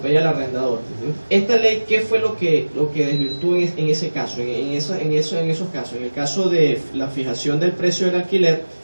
al arrendador. Esta ley, ¿qué fue lo que desvirtuó en ese caso, en esos casos? En el caso de la fijación del precio del alquiler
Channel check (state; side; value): inverted; both; correlation -1.00